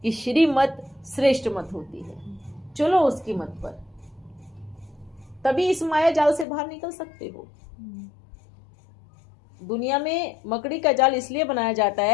कि श्रीमत श्रेष्ठ मत होती है, चलो उसकी मत पर, तभी इस माया जाल से बाहर निकल सकते हो। दुनिया में मकड़ी का जाल इसलिए बनाया जाता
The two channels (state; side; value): drops out; right; at 6.5 s